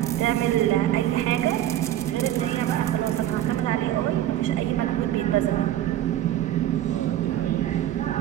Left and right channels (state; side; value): quieter; left; 12.6 dB